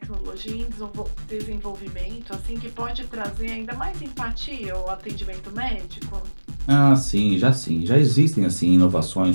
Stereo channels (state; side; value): inverted; both; correlation -1.00